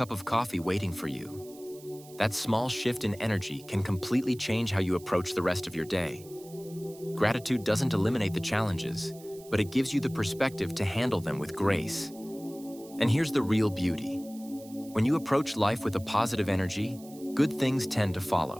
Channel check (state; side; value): noise; right; hiss, 21 dB below the sound